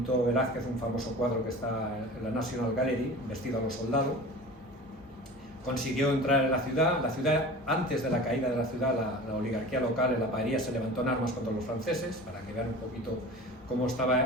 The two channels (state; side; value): normal; both; correlation 0.37